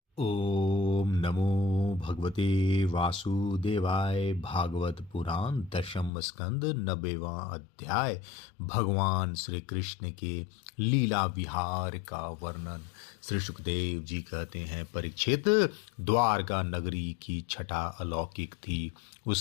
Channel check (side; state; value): right; drops out; at 6.1 s